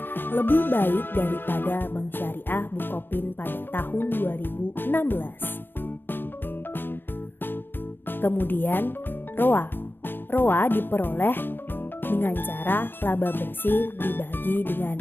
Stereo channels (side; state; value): right; late; 0.099 ms